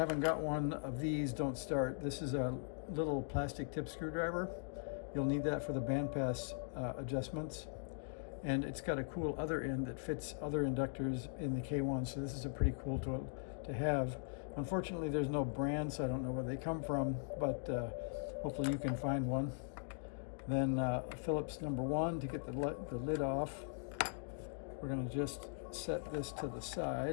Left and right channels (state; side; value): silent; right; digital silence